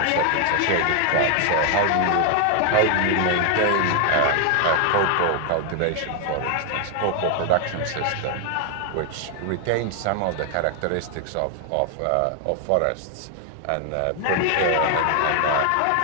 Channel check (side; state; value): both; different; correlation 0.00